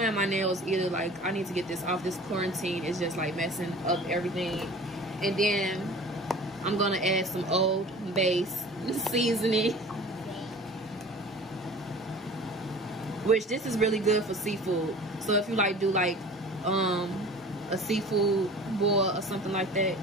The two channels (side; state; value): both; normal; correlation 0.42